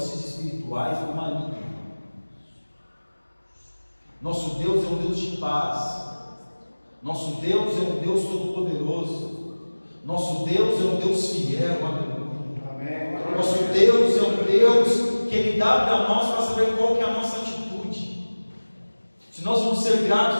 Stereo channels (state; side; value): inverted; both; correlation -1.00